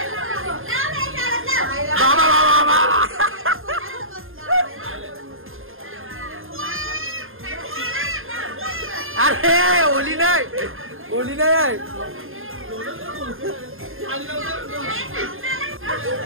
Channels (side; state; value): left; late; 0.60 ms